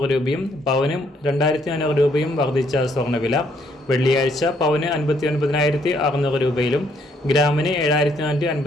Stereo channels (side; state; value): both; normal; correlation 0.69